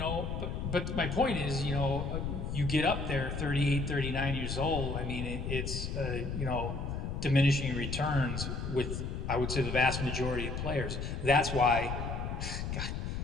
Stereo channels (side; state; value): left; noise; rumble, 3 dB below the sound